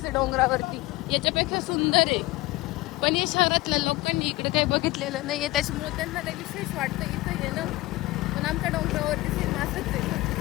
डोंगरावरती, याच्यापेक्षा सुंदर आहे. पण या शहरातल्या लोकांनी इकडे काही बघितलेलं नाहीये, त्याच्यामुळे त्यांना काही विशेष वाटतं इथं येणं. पण आमच्या डोंगरावरती सेम असंच आहे.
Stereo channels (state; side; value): quieter; right; 19.3 dB